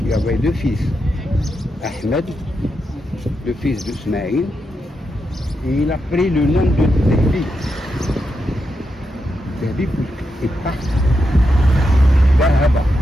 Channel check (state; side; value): normal; both; correlation 0.85